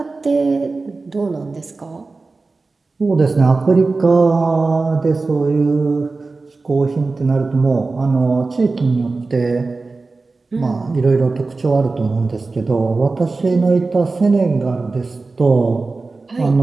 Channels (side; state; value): left; quieter; 3.7 dB